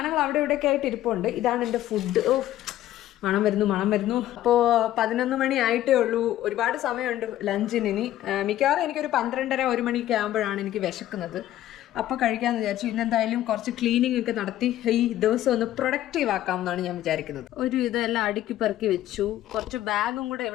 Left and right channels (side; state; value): right; quieter; 13.4 dB